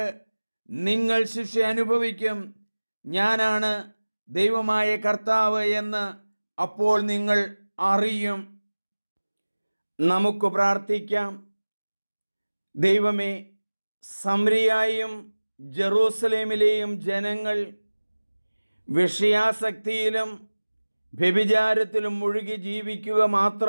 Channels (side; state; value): both; inverted; correlation -1.00